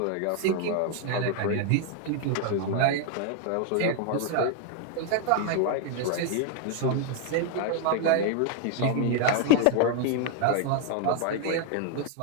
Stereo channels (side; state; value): both; different; correlation 0.00